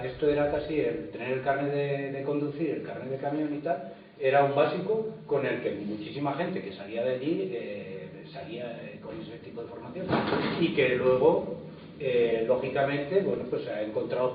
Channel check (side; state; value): both; identical; correlation 1.00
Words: esto era casi el tener el carnet de conducir, el carnet de camión y tal, era un básico con el que muchísima gente que salía de allí salía con ese tipo de formación, y que luego lógicamente, bueno, pues ha encontrado